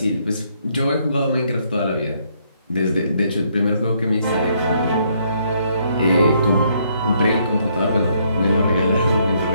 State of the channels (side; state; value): both; inverted; correlation -0.70